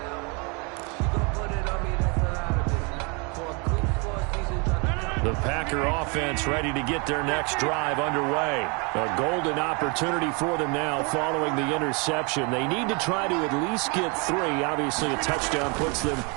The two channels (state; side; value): quieter; left; 32.0 dB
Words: The Packer offense ready to get their next drive underway. A golden opportunity for them now following the interception. They need to try to at least get 3. Obviously, a touchdown puts them